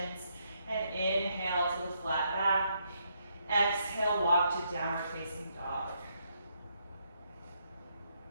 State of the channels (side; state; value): both; inverted; correlation -0.76